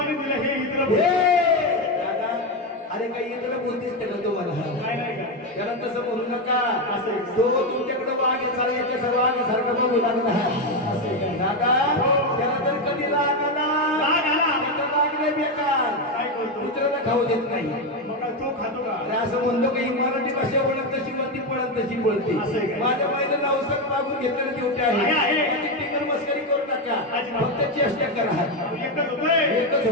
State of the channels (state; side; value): normal; both; correlation 0.10